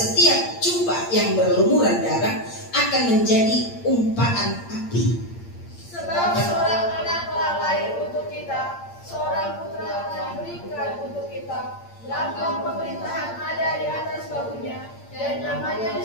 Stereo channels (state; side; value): late; right; 8.7 ms